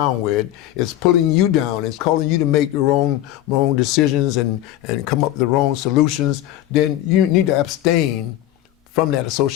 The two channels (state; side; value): quieter; right; 13.7 dB